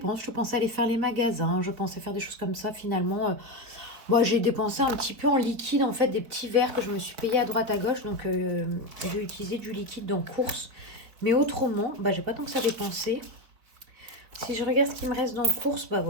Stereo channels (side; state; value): left; late; 4.6 ms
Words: Je pensais aller faire les magasins, je pensais faire des choses comme ça. Finalement, moi j'ai dépensé un petit peu en liquide, en fait, des petits verres que je me suis payé à droite à gauche. Donc j'ai utilisé du liquide dans course. Mais autrement, j'ai pas tant que ça dépensé. Si je regarde ce qui me reste dans course,